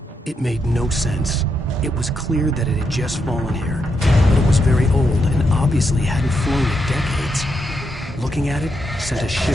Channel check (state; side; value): normal; both; correlation 0.81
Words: It made no sense. It was clear that it had just fallen here, but it was very old and obviously hadn't flown in decades. Looking at it sent a